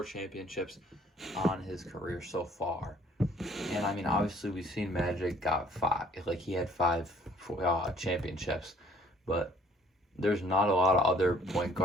championships on his career so far, and I mean obviously we've seen Magic got 5. Like he had 5 championships, but there's not a lot of other point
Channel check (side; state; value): both; normal; correlation 0.58